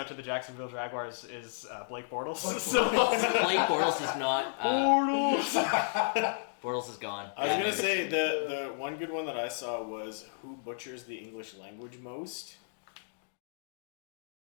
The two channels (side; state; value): right; silent; digital silence